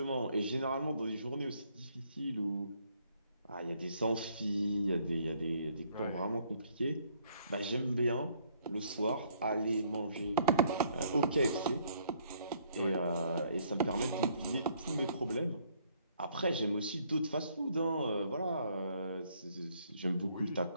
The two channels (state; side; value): inverted; both; correlation -0.65